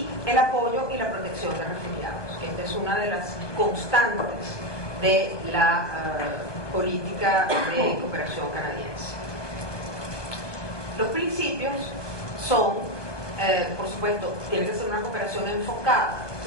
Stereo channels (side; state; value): right; late; 1.2 ms